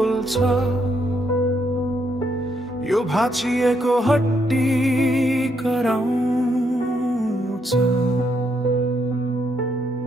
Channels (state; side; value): normal; both; correlation 0.75